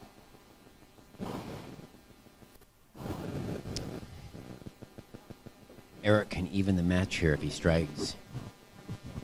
Eric can even the match here if he strikes.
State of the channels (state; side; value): identical; both; correlation 1.00